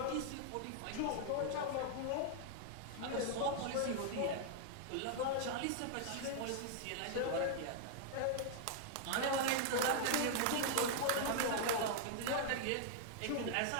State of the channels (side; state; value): both; different; correlation -0.01